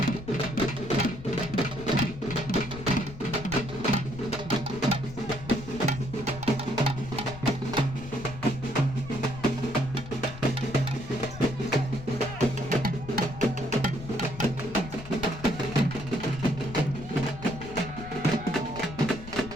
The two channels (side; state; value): left; noise; rumble, 13 dB below the sound